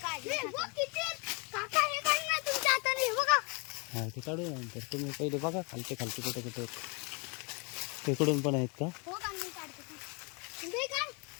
काढले काका हे काढ ना तुमच्या हाताने. हे बघा हा ते काढू नंतर. तुम्ही पहिले बघा खालचे कुठे कुठे तिकडून पण आहेत का? हो का मी काढते. हे काढ.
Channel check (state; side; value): quieter; right; 32.8 dB